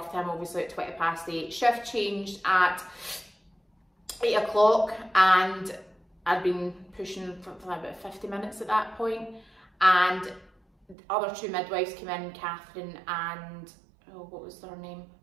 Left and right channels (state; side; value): drops out; left; at 11.0 s